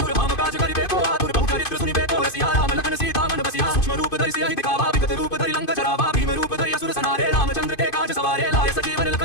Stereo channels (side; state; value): right; late; 2.5 ms